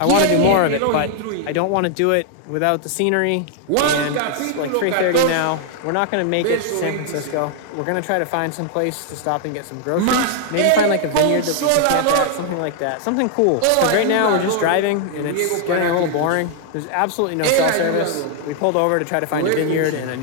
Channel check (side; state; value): both; different; correlation 0.00